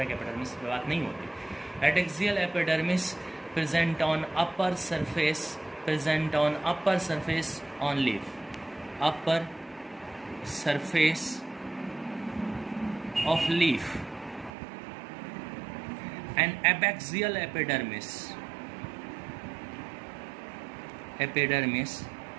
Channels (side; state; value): left; drops out; at 14.5 s